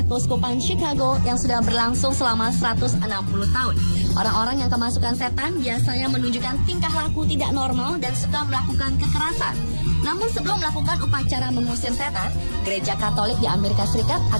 keuskupan Chicago yang sudah berlangsung selama 160 tahun. Orang-orang yang kemasukan setan biasanya menunjukkan tingkah laku tidak normal dan suka melakukan kekerasan. Namun sebelum melakukan upacara mengusir setan, Gereja Katolik di Amerika Serikat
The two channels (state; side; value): inverted; both; correlation -1.00